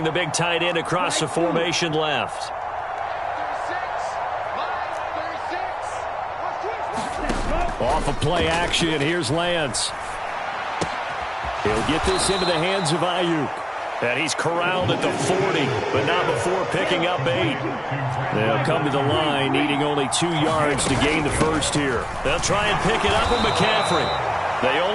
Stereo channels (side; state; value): both; identical; correlation 1.00